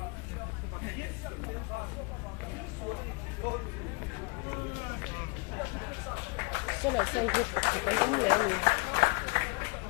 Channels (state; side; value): quieter; right; 29.6 dB